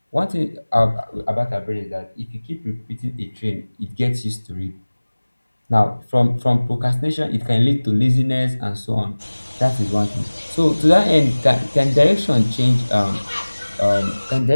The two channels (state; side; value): inverted; both; correlation -1.00